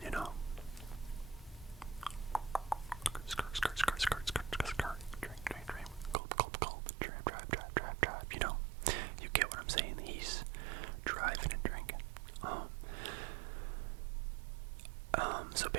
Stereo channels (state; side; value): drops out; left; at 6.2 s